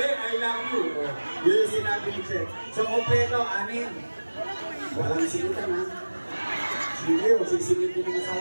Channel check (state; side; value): inverted; both; correlation -1.00